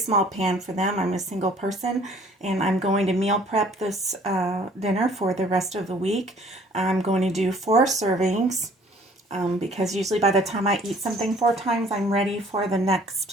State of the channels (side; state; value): both; normal; correlation 0.55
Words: pan for them. I'm a single person and I'm going to meal prep this dinner for the rest of the week. I'm going to do 4 servings because usually by the time I eat something 4 times, I'm ready for the